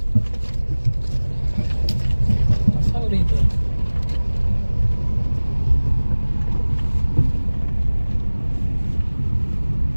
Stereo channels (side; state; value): both; inverted; correlation -1.00